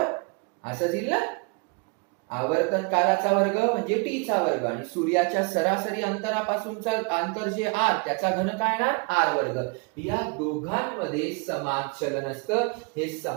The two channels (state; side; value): quieter; left; 32.4 dB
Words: असं दिलं ना. आवर्तन कालाचा वर्ग म्हणजे टी चा वर्ग आणि सूर्याच्या सरासरी अंतरापासूनचा अंतर जे आर त्याचा घन काय येणार, आर वर्ग. या दोघांमध्ये समान चलन असतं, हे